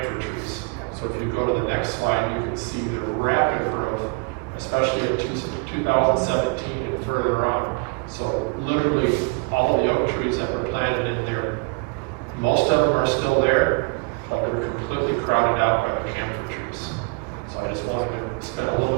trees. So if you go to the next slide, you can see the rapid growth, especially in 2017 and further on. So literally all of the oak trees that were planted in there, most of them are still there, but they're completely crowded out by the camphor trees. So I just wanted to spend a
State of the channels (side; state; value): left; quieter; 32.4 dB